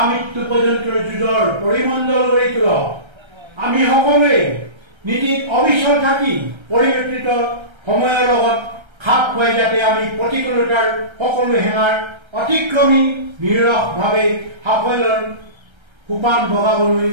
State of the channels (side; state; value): left; late; 1.3 ms